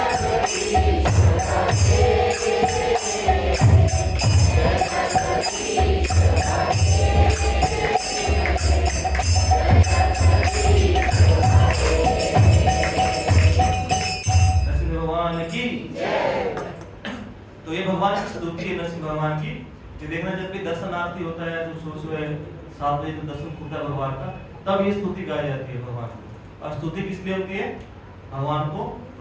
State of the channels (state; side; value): identical; both; correlation 1.00